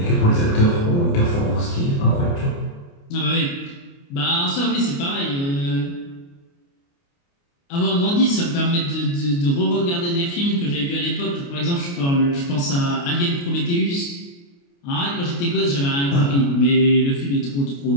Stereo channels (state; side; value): late; right; 29 ms